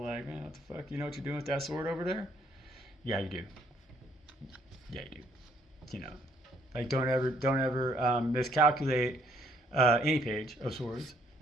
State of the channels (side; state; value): both; normal; correlation 0.66